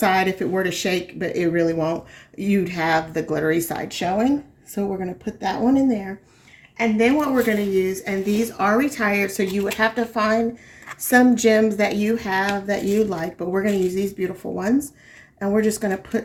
if it were to shake, but it really won't, you'd have the glittery side showing. So we're going to put that one in there. And then what we're going to use, and these are retired, so you would have to find some gems that you have that you like, but we're going to use these beautiful ones. And we're just going to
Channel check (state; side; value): identical; both; correlation 1.00